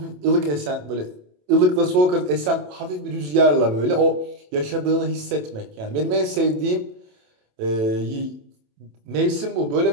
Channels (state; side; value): late; left; 27 ms